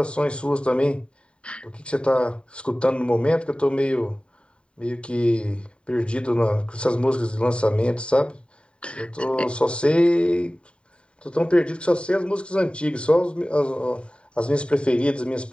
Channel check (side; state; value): right; late; 0.054 ms